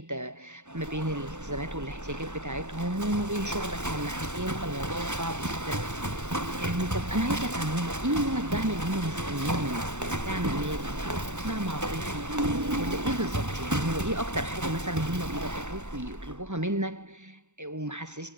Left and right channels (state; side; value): late; left; 0.84 ms